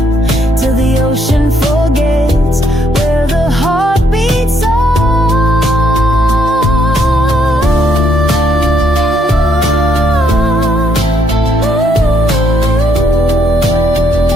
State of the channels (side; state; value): both; normal; correlation 0.72